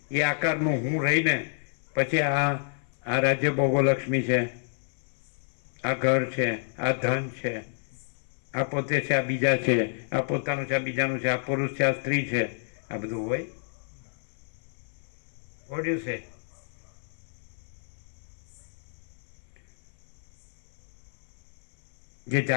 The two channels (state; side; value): silent; right; 58 dB below the other